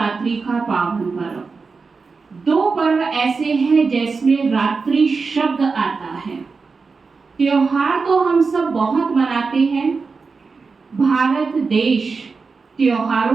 का पावन पर्व। दो पर्व ऐसे हैं जिसमें रात्रि शब्द आता है। त्योहार तो हम सब बहुत मनाते हैं। भारत देश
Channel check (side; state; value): left; quieter; 4.6 dB